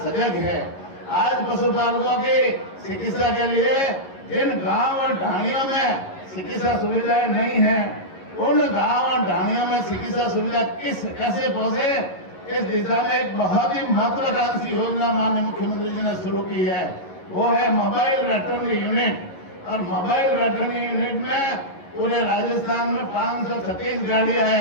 सजग है। आज पशुपालकों की चिकित्सा के लिए जिन गांव और ढाणियों में चिकित्सा सुविधाएं नहीं है, उन गांव और ढाणियों में चिकित्सा सुविधा कैसे पहुंचे, इस दिशा में एक बहुत ही महत्वाकांक्षी योजना माननीय मुख्यमंत्री जी ने शुरू की है। वो है मोबाइल वेटरनरी यूनिट। और मोबाइल वेटरनरी यूनिट में पूरे राजस्थान में 536 गाड़ियां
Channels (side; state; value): right; late; 11 ms